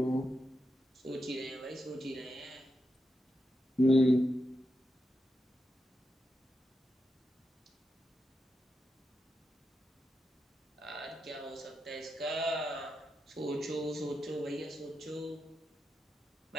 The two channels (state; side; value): normal; both; correlation 0.87